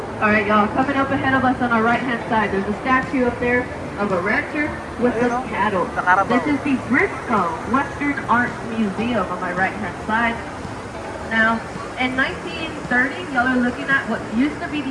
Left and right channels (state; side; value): identical; both; correlation 1.00